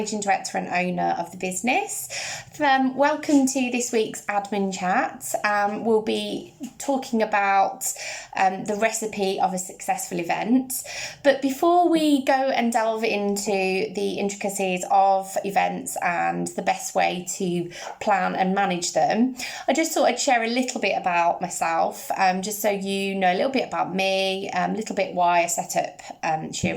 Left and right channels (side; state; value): both; identical; correlation 1.00